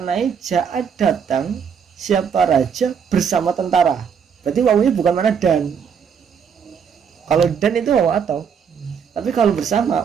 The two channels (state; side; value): quieter; left; 7.0 dB